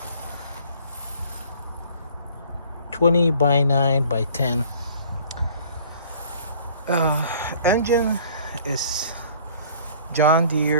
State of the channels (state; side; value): inverted; both; correlation -0.53